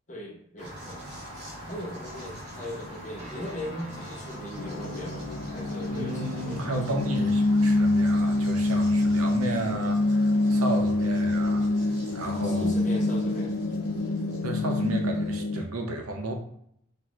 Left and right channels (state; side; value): normal; both; correlation 0.72